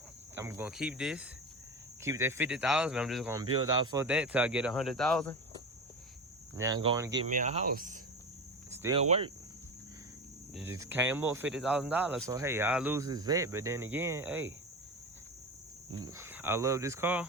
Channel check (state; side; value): normal; both; correlation 0.25